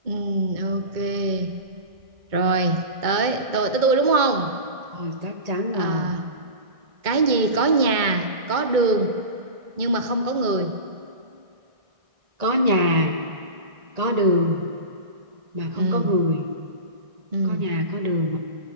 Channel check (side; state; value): left; late; 2.1 ms